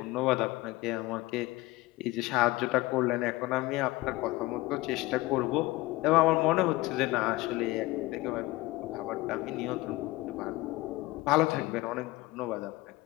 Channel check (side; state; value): right; quieter; 19.7 dB